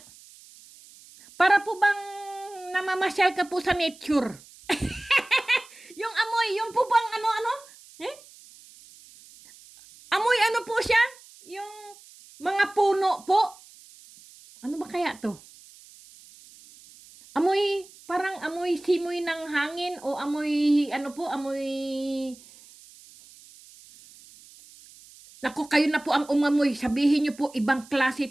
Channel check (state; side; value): noise; right; hiss, 23 dB below the sound